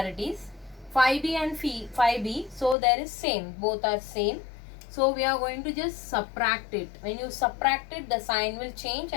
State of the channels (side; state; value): right; drops out; at 2.8 s